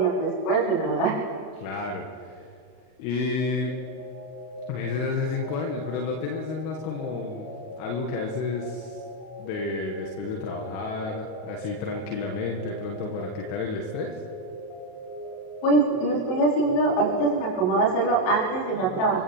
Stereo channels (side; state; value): right; late; 38 ms